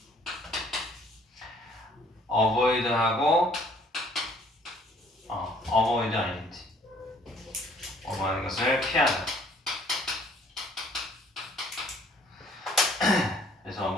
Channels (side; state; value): both; normal; correlation 0.59